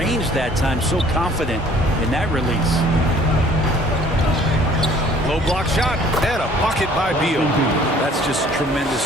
that time, so confident in that release. Low block shot and a bucket by Beal. That's just tremendous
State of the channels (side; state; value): both; normal; correlation 0.55